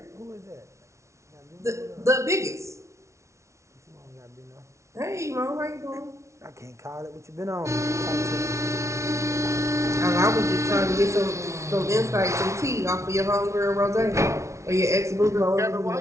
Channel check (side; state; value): left; late; 0.14 ms